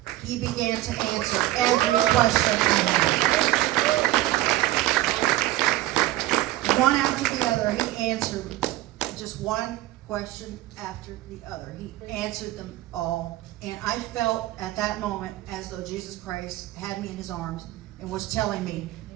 he began to answer every question I had. One after the other, he answered just one question after the other. He answered them all. And I felt at that moment as though Jesus Christ had me in his arms and was telling me,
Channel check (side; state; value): left; quieter; 16.1 dB